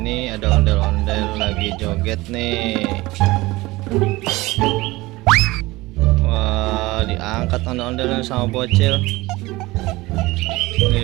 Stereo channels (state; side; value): quieter; left; 20.4 dB